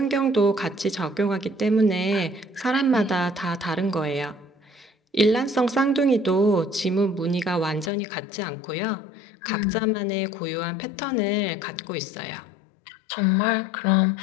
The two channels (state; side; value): drops out; right; at 7.9 s